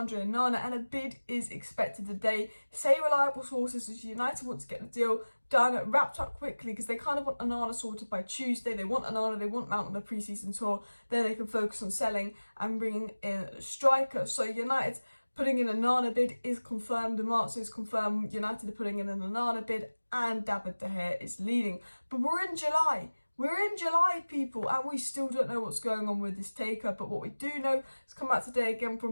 and a bid is expected today. Say reliable sources as United want to get the deal done, wrapped up quickly, because they kind of want Onana sorted by Tuesday. They want Onana, they want Mount on the pre-season tour, then they can focus on selling and bringing in a striker. So United putting in an Onana bid is confirmed. Marzio is confirmed. United are putting in an Onana bid, and David De Gea is leading. But we're in July. We're in July, people, and we still don't know what's going on with this takeover. But what we do know has come out today again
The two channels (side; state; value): both; inverted; correlation -1.00